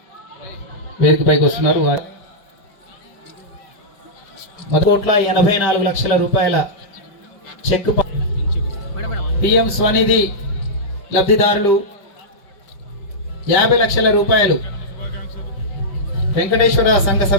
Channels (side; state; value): right; late; 5.0 ms